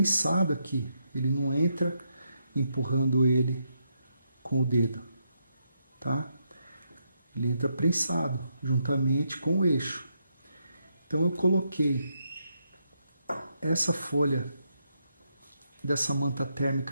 aqui, ele não entra empurrando ele com o dedo, tá? Ele entra prensado, juntamente com o eixo. Então eu coloquei essa folha dessa manta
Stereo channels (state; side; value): inverted; both; correlation -0.80